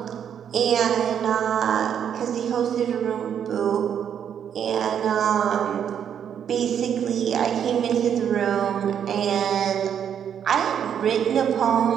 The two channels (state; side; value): quieter; left; 8.6 dB